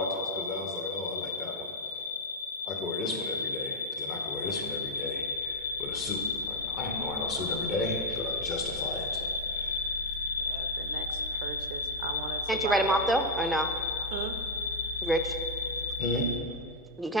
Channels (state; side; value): normal; both; correlation -0.01